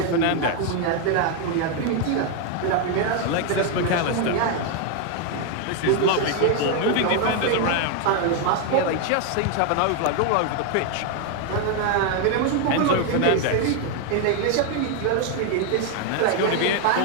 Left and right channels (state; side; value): different; both; correlation 0.01